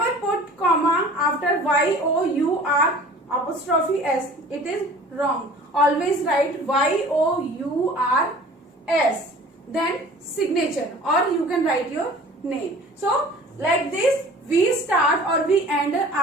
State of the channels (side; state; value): both; normal; correlation 0.46